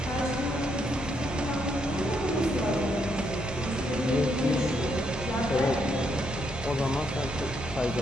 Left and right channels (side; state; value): both; normal; correlation 0.76